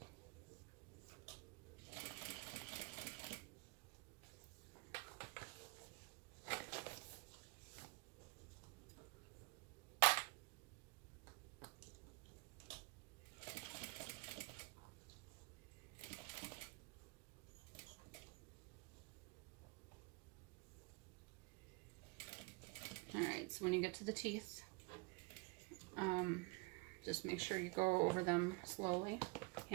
And alright, so when you get to the teeth, just make sure you go over them slowly.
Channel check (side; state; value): left; quieter; 28.9 dB